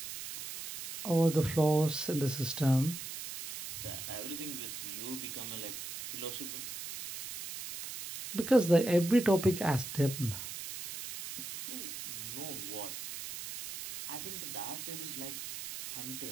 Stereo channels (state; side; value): noise; right; hiss, 8 dB below the sound